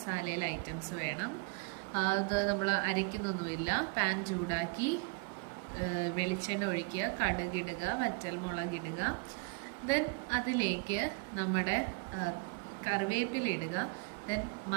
ഐറ്റംസ് വേണം. അത് നമ്മൾ അരയ്ക്കുന്നൊന്നുമില്ല. പാൻ ചൂടാക്കി വെളിച്ചെണ്ണ ഒഴിക്കുക, കടുകിടുക, വറ്റൽമുളകിടുക. ദെൻ അതിലേക്ക് നമ്മുടെ കറിവേപ്പില ഇടുക. ദെൻ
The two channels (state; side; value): quieter; left; 30.4 dB